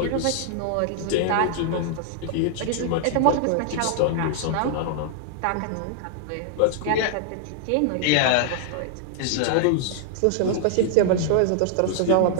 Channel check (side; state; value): both; different; correlation 0.00